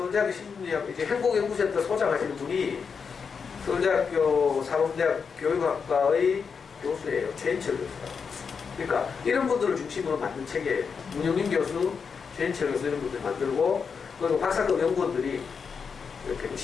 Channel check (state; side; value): quieter; right; 5.9 dB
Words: 심리학, 이제 행복연구센터 소장하시는 분이 서울대학교 사범대학 교육학과의 교수예요. 최인철 교수가. 그러니까 이런 분들을 중심으로 만든 책이에요. 문영민 교수, 최인철 교수 이런 분들 만들고, 그리고 박사급 연구원들이 이렇게